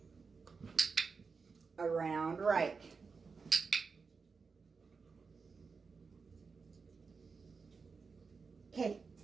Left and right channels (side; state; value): left; quieter; 4.9 dB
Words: Around right. Okay,